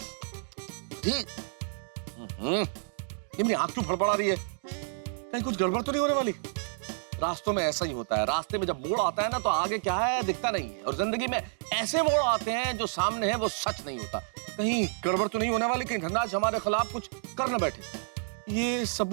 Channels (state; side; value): silent; left; digital silence